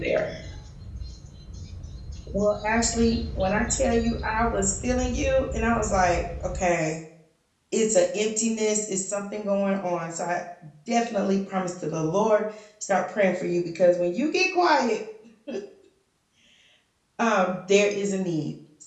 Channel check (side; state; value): both; identical; correlation 1.00